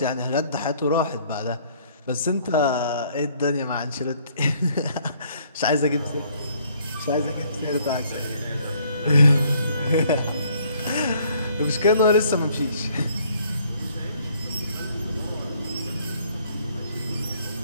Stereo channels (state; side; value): inverted; both; correlation -0.63